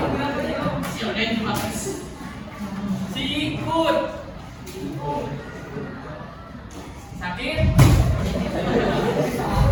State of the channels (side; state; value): both; identical; correlation 1.00